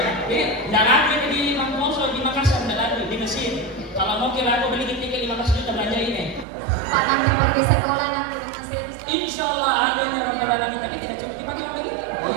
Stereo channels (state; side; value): drops out; left; at 6.5 s